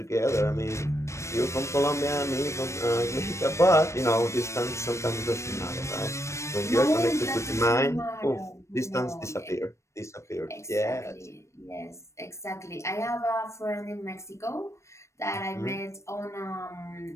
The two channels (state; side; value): late; right; 0.14 ms